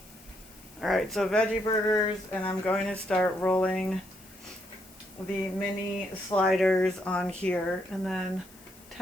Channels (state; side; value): noise; left; hiss, 24 dB below the sound